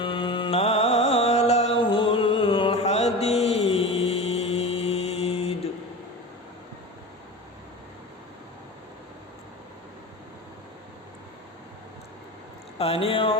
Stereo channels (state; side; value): normal; both; correlation 0.30